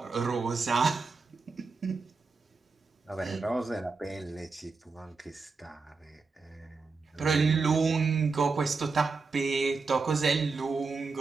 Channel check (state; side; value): quieter; left; 4.3 dB